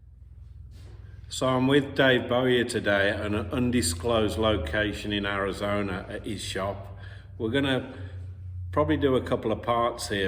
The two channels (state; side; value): identical; both; correlation 1.00